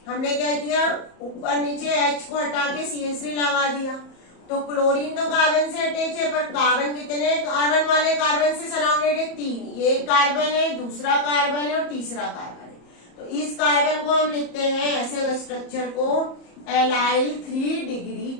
हमने क्या किया, ऊपर नीचे H को हटा के CH3 लगा दिया। तो क्लोरीन तो कार्बन से अटैच है, पर कार्बन कितने कार्बन वाले कार्बन से सराउंडेड है, 3। ये एक कार्बन है, दूसरा कार्बन है और तीसरा कार्बन है। तो इस कार्बन को हम लिखते हैं ऐसे स्ट्रक्चर को एलाइल 3 डिग्री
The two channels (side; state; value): right; late; 34 ms